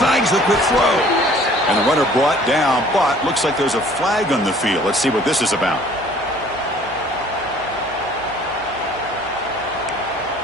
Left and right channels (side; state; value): right; noise; hum, 22 dB below the sound